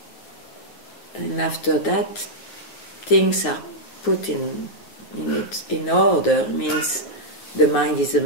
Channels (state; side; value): late; right; 9.4 ms